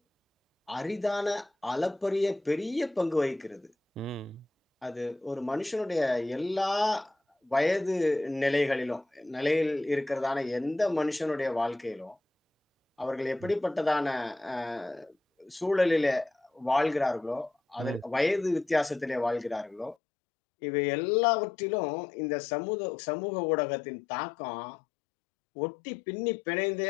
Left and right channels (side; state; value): right; drops out; at 20.0 s